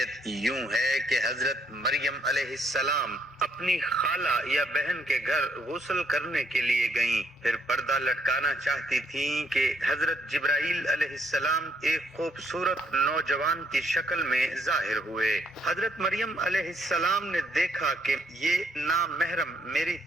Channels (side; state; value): both; normal; correlation 0.71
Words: یوں ہے کہ حضرت مریم علیہ السلام اپنی خالہ یا بہن کے گھر غسل کرنے کے لیے گئیں، پھر پردہ لٹکانا چاہتی تھیں کہ حضرت جبرائیل علیہ السلام ایک خوبصورت نوجوان کی شکل میں ظاہر ہوئے۔ حضرت مریم علیہ السلام نے دیکھا کہ یہ نامحرم میری